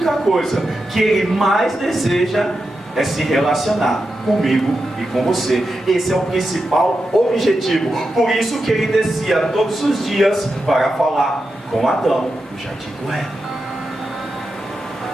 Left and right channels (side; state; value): both; normal; correlation 0.89